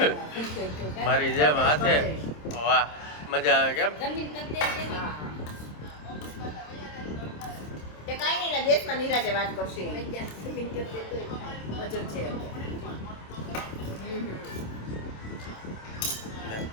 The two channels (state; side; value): late; right; 26 ms